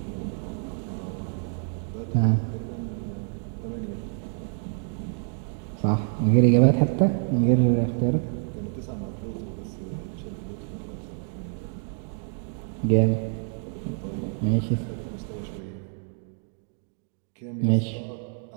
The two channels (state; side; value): silent; left; 60 dB below the other